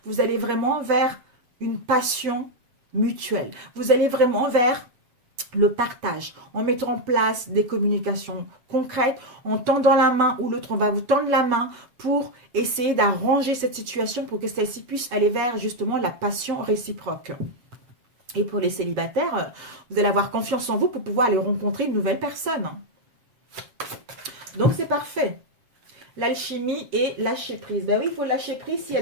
vous allez vraiment vers une passion mutuelle. Vous allez vraiment vers le partage, en mettant en place des communications concrètes, en tendant la main ou l'autre, on va vous tendre la main pour essayer d'arranger cette situation pour que celle-ci puisse aller vers justement la passion réciproque. Et pour les célibataires, vous allez avoir confiance en vous pour pouvoir aller rencontrer une nouvelle personne. Donc c'est parfait. L'alchimie et lâcher prise. Ben oui, il faut lâcher prise s'il y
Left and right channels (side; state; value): left; late; 7.3 ms